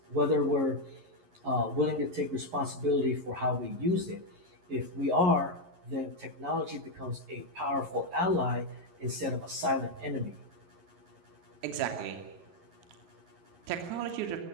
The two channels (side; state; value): left; late; 11 ms